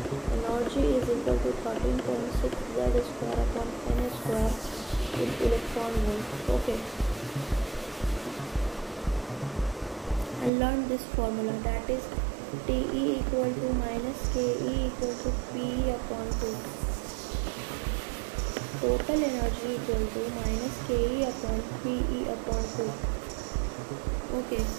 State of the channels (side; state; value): left; drops out; at 10.5 s